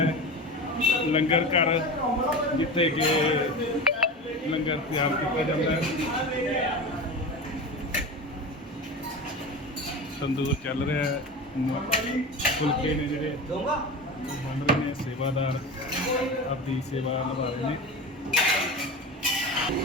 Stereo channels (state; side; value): normal; both; correlation 0.28